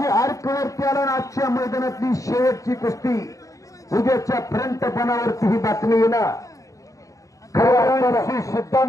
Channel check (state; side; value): late; right; 0.16 ms